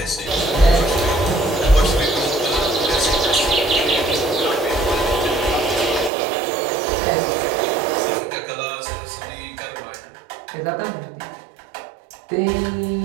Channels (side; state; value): left; drops out; at 6.1 s